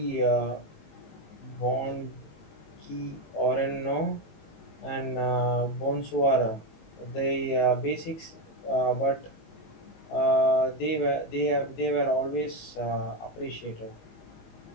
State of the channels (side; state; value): right; late; 19 ms